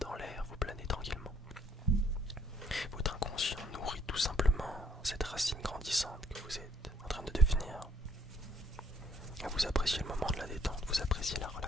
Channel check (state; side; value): normal; both; correlation 0.66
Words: l'air, vous planez tranquillement. Votre inconscient nourrit tout simplement cette racine grandissante que vous êtes en train de devenir. Et vous appréciez le moment de la détente, vous appréciez la